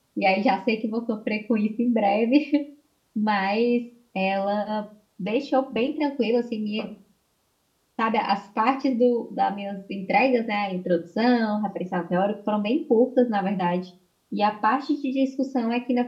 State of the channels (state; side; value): identical; both; correlation 1.00